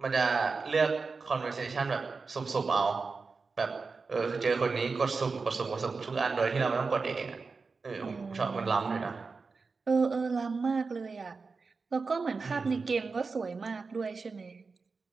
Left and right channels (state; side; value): quieter; left; 4.5 dB